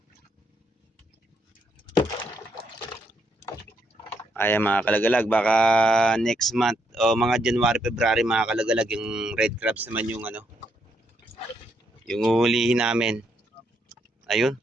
Ayan mga kalagalag, baka next month o mga January, February mga kalagalag, yung red crabs naman yung yung uhulihin namin. Ayun,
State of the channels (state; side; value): normal; both; correlation 0.76